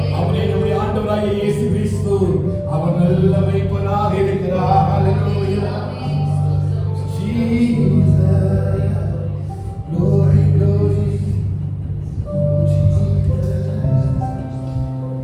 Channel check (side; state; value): both; identical; correlation 1.00